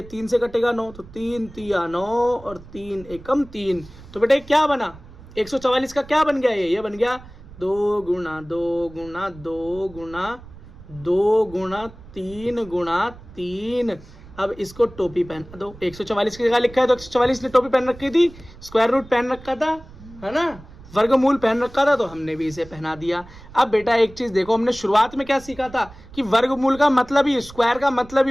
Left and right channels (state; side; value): noise; right; rumble, 19 dB below the sound